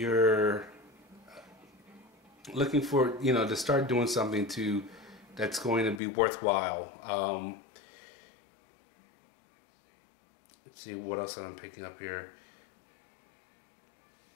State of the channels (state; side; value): drops out; right; at 6.0 s